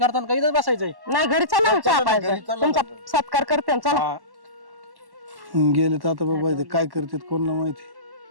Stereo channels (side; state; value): left; late; 1.1 ms